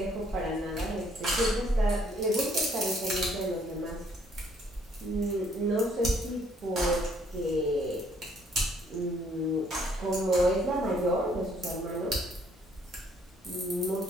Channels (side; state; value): both; normal; correlation 0.65